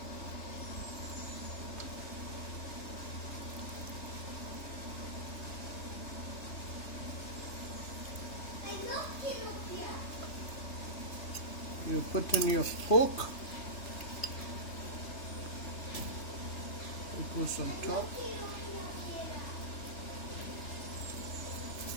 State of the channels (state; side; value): late; right; 3.3 ms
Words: You put in your pork. It goes on top.